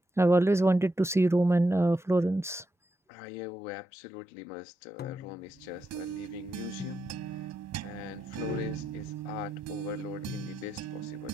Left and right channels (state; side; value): normal; both; correlation 0.85